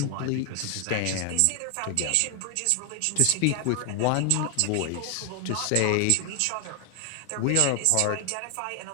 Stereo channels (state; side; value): different; both; correlation 0.00